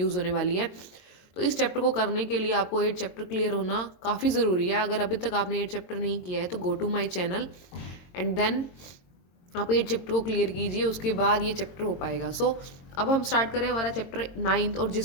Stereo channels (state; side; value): late; right; 22 ms